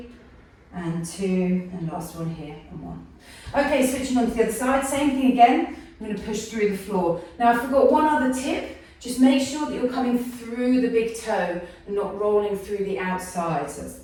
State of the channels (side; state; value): both; identical; correlation 1.00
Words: and 2, and last one here, and 1. Okay, switching on to the other side, same thing again. I'm going to push through the floor. Now I forgot one other tip. Just make sure that you're coming through the big toe and not rolling through the outside. So that's